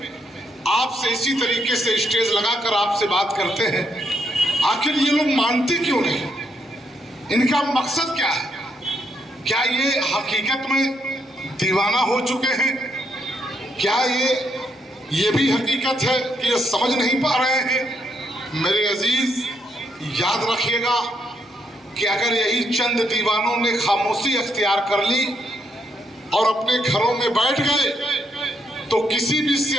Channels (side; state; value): both; normal; correlation 0.76